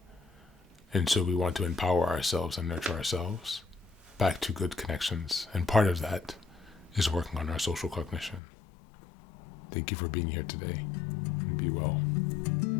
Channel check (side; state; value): right; drops out; at 8.4 s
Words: And so we want to empower ourselves and nurture ourselves back to good connections. And part of that is working on our social cognition. Thank you for being here today. And be well.